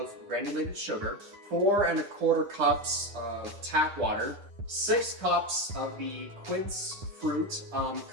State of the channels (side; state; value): left; late; 10 ms